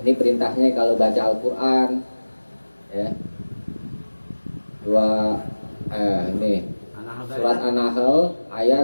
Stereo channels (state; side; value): inverted; both; correlation -1.00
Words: Ini perintahnya kalau baca Al-Quran ya. Ini surat An-Nahl